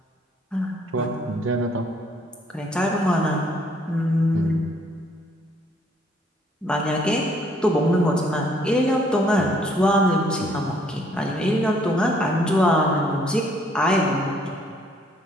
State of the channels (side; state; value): both; normal; correlation 0.65